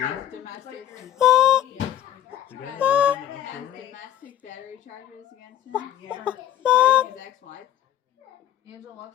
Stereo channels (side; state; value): right; quieter; 11.9 dB